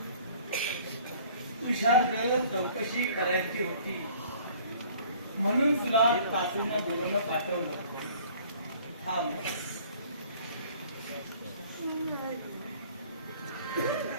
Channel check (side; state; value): both; inverted; correlation -0.53